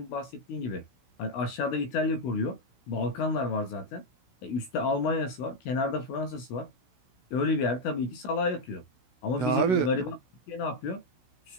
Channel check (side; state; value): right; late; 16 ms